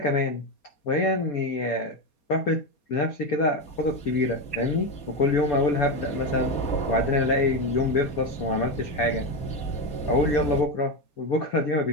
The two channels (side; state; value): right; late; 4.2 ms